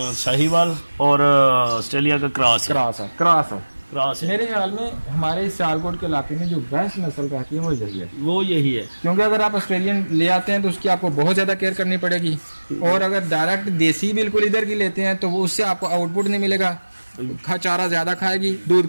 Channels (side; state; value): both; inverted; correlation -1.00